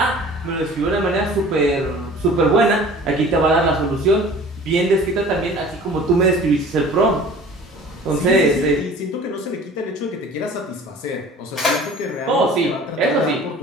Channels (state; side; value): normal; both; correlation 0.45